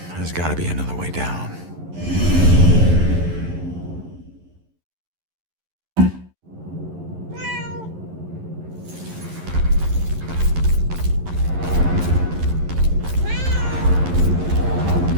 There's gotta be another way down.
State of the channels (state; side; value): late; left; 11 ms